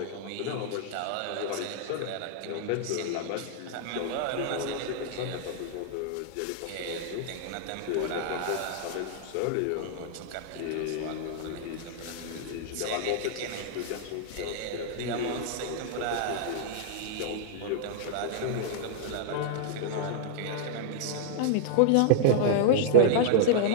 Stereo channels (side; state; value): both; different; correlation -0.01